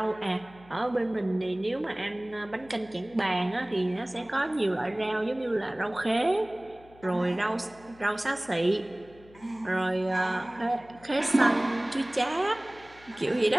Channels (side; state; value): left; noise; hum, 24 dB below the sound